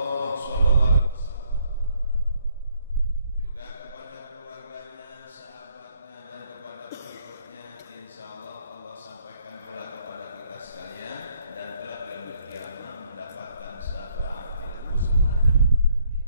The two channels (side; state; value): both; inverted; correlation -0.68